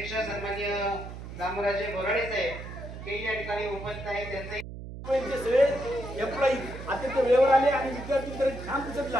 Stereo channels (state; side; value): noise; right; hum, 11 dB below the sound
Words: सन्माननीय दामोराजे बोराडे साहेब हे या ठिकाणी उपस्थित आहेत, त्यांचंही सगळे एम्प्लॉई अत्यंत वेळेवर आले आणि विद्यार्थी तर छान